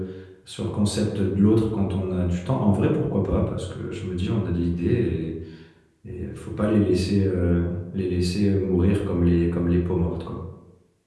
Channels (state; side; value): identical; both; correlation 1.00